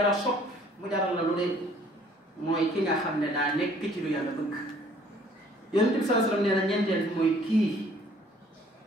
sopp mu jaral la lu ne mooy ki nga xam ne daa nekk ci lu yàlla bëgg Yonent bi sallallahu alayhi wasallam nee na ñeenteel bi mooy kii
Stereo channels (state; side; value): normal; both; correlation 0.58